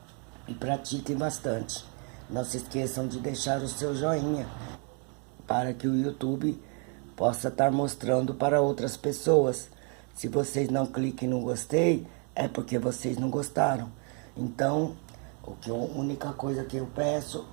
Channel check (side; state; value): left; quieter; 38.4 dB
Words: e pratiquem bastante. Não se esqueçam de deixar o seu joinha para que o YouTube possa estar mostrando para outras pessoas. Se vocês não cliquem no gostei, é porque vocês não gostaram. Então, a única coisa que eu peço